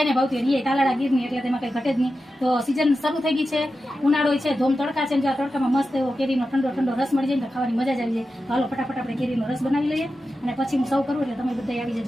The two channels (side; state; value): both; normal; correlation 0.91